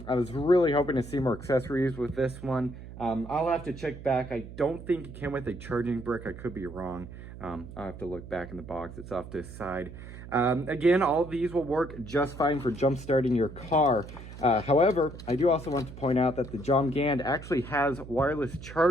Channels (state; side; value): noise; right; hum, 13 dB below the sound